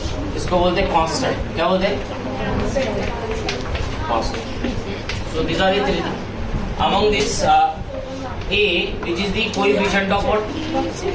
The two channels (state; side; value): identical; both; correlation 1.00